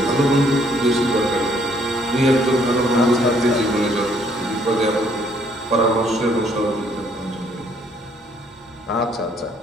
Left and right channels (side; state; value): both; normal; correlation 0.65